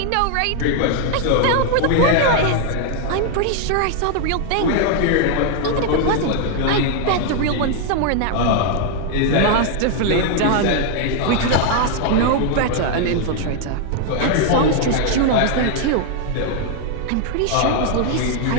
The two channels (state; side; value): different; both; correlation 0.00